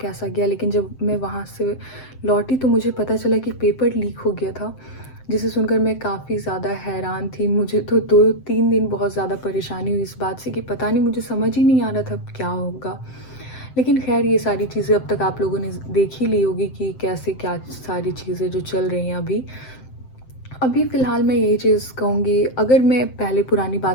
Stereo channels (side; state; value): right; late; 7.7 ms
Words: गया। लेकिन जब मैं वहाँ से लौटी तो मुझे पता चला कि पेपर लीक हो गया था, जिसे सुनकर मैं काफ़ी ज़्यादा हैरान थी। मुझे तो 2-3 दिन बहुत ज़्यादा परेशानी हुई इस बात से कि पता नहीं, मुझे समझ ही नहीं आ रहा था क्या होगा। लेकिन ख़ैर, ये सारी चीज़ें अब तक आप लोगों ने देख ही ली होगी कि कैसे क्या सारी चीज़ें जो चल रही हैं अभी। अभी फ़िलहाल मैं यही चीज़ कहूँगी, अगर मैं पहले पुरानी